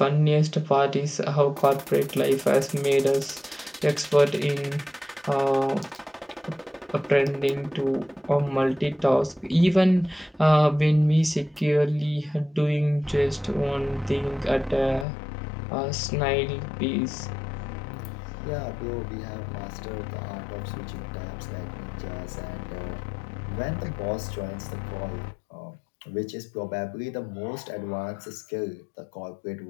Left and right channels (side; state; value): right; drops out; at 15.1 s